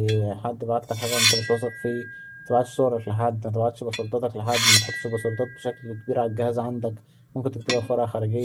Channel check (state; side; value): identical; both; correlation 1.00